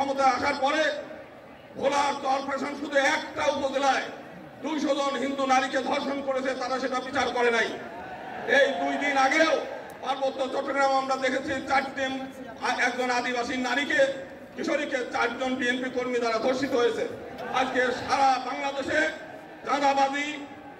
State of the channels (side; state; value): both; identical; correlation 1.00